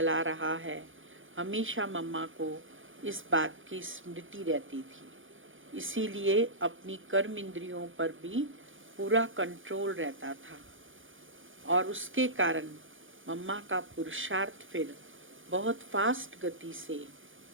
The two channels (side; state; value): left; late; 0.57 ms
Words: रहा है, हमेशा मम्मा को इस बात की स्मृति रहती थी। इसीलिए अपनी कर्म इंद्रियों पर भी पूरा कंट्रोल रहता था और उसके कारण मम्मा का पुरुषार्थ फिर बहुत फास्ट गति से